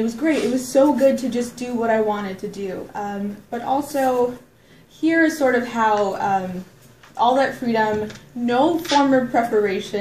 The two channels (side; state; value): both; identical; correlation 1.00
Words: was great. It was so good to just do what I wanted to do. But also, here is sort of how all that freedom, no former